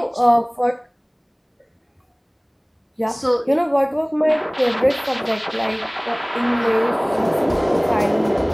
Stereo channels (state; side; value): identical; both; correlation 1.00